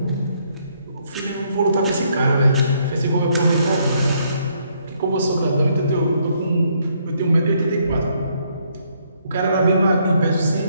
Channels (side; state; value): both; inverted; correlation -0.71